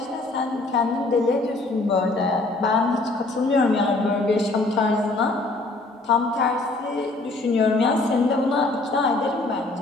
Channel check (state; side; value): quieter; right; 3.1 dB